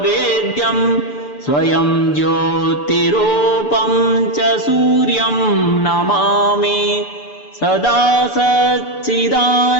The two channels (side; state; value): right; late; 6.9 ms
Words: स्वयं ज्योतिरूपं च सूर्यं नमामि सदा सच्चिदानन्दमेकं